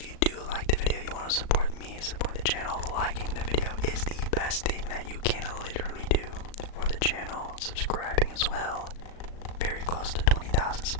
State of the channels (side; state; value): right; late; 37 ms